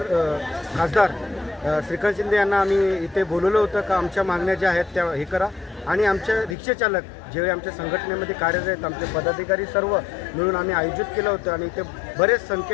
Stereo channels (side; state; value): right; drops out; at 6.6 s